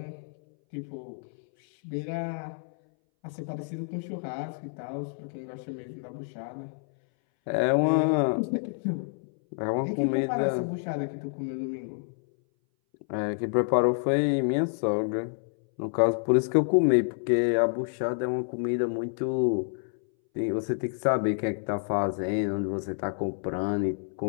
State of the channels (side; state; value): right; silent; 59 dB below the other